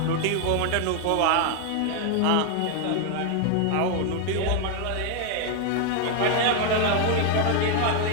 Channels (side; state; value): both; different; correlation 0.00